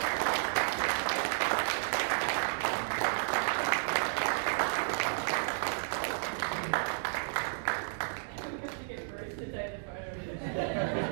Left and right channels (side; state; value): left; silent; digital silence